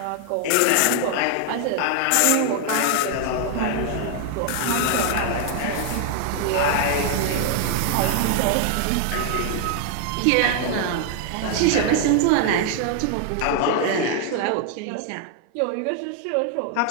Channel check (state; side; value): different; both; correlation 0.00